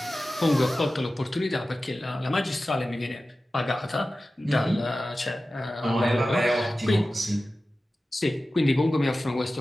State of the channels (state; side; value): normal; both; correlation 0.95